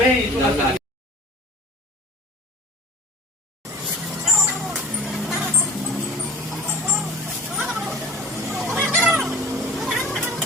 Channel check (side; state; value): both; normal; correlation 0.43